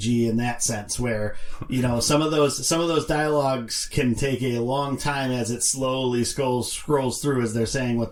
in that sense, where some of those dialogues can take a long time as it slowly scrolls through as they're saying what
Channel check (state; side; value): identical; both; correlation 1.00